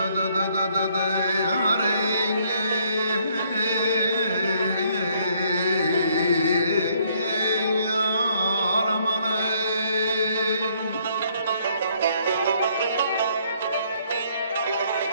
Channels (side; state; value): both; inverted; correlation -0.67